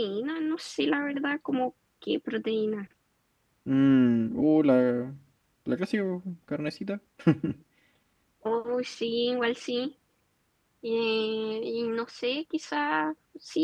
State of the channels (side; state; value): both; identical; correlation 1.00